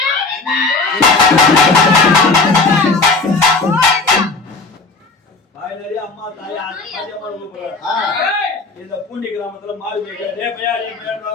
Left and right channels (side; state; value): right; quieter; 3.8 dB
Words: தாய் நிறைய அம்மா தாய் இந்த பூண்டி கிராமத்துல மாறி